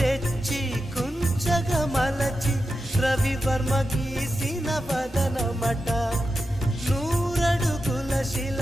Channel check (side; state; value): both; normal; correlation 0.90